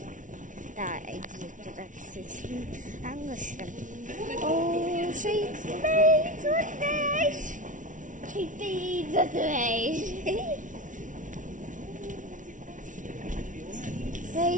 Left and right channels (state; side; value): late; left; 0.37 ms